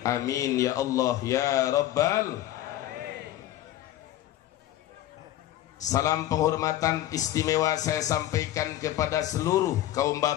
Amin ya Allah ya Rabbal. Salam penghormatan istimewa saya sampaikan kepada seluruh kaum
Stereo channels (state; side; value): quieter; right; 13.8 dB